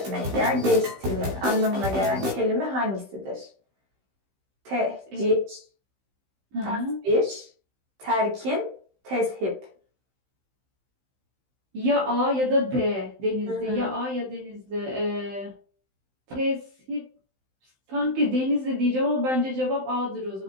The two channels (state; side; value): late; left; 15 ms